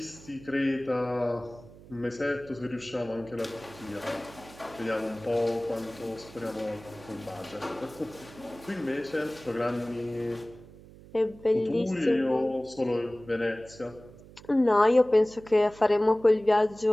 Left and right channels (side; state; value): right; noise; hum, 20 dB below the sound